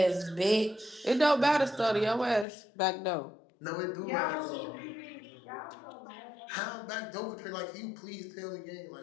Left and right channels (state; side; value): drops out; right; at 2.5 s